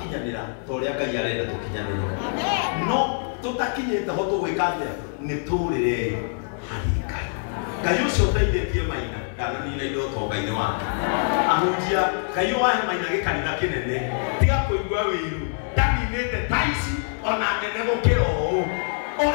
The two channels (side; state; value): right; silent; 56 dB below the other